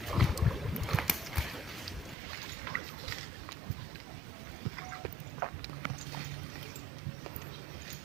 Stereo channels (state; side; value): drops out; left; at 2.1 s